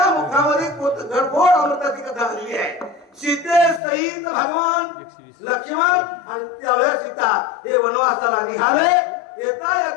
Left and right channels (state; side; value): drops out; right; at 3.8 s